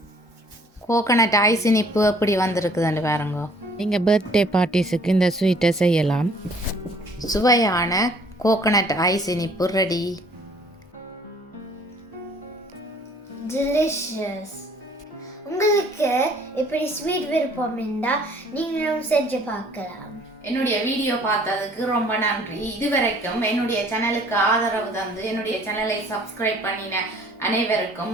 கோகனட் ஐஸ் இனிப்பு எப்படி வந்திருக்குதுன்னு பாருங்க. நீங்கள் பர்த்டே பார்ட்டிஸுக்கு இந்த ஸ்வீட்டை செய்யலாம். சுவையான கோகனட் ஐஸ் இனிப்பு ரெடி. delicious. உங்களுக்கு இப்படி ஸ்வீட் விருப்பம் இருந்தால் நீங்களும் செஞ்சு பார்க்கலாம். என்னுடைய வீடியோ பார்த்ததுக்கு ரொம்ப நன்றி. இதுவரைக்கும் என்னுடைய சேனலுக்கு ஆதரவு தந்து என்னுடைய சேனலை சப்ஸ்கிரைப் பண்ணின அனைவருக்கும்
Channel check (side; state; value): both; normal; correlation 0.57